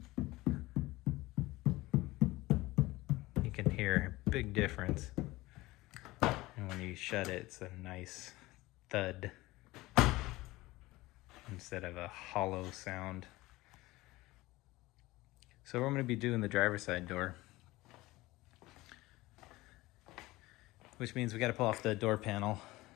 You can hear a big difference. And when you shut it, it's a nice thud instead of a hollow sound. So I'm going to be doing the driver's side door, which means we got to pull off the door panel.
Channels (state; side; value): quieter; right; 19.5 dB